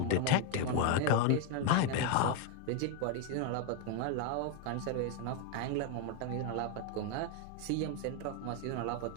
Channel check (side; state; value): both; different; correlation 0.01